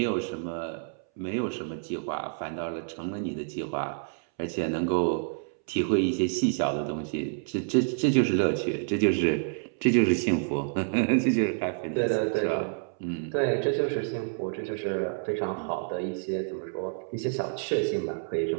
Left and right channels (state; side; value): silent; left; 59 dB below the other